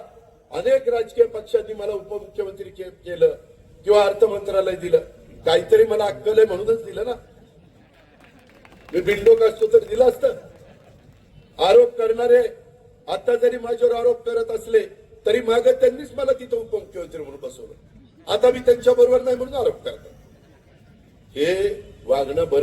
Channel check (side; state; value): both; identical; correlation 1.00